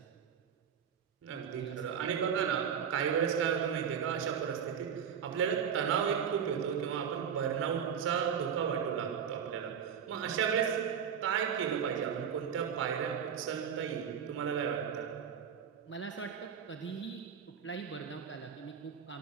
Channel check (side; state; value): left; quieter; 7.7 dB